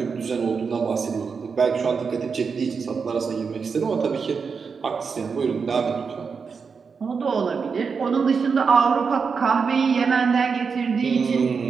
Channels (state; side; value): quieter; left; 5.5 dB